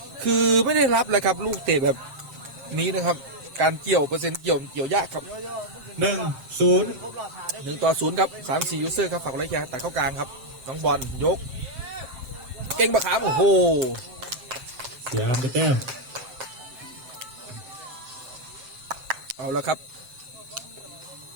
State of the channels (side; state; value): left; late; 7.5 ms